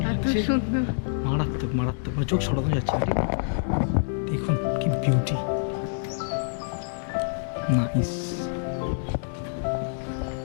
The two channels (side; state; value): right; silent; digital silence